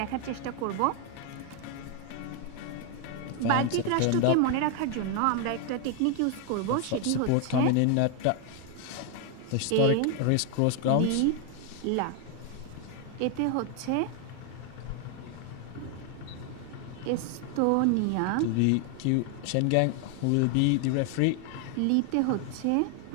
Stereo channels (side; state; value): both; different; correlation 0.01